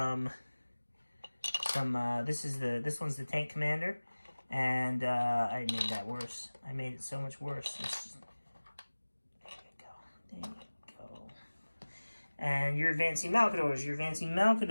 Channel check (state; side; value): inverted; both; correlation -1.00